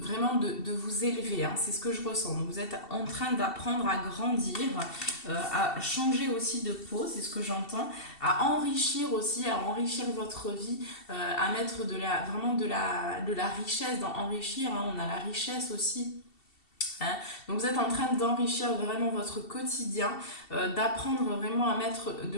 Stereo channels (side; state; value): right; late; 2.7 ms